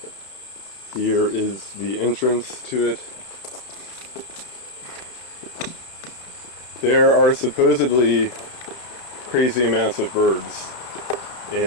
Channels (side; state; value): right; late; 31 ms